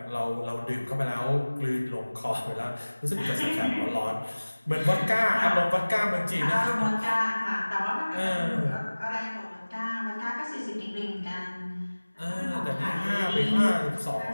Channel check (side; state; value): both; inverted; correlation -1.00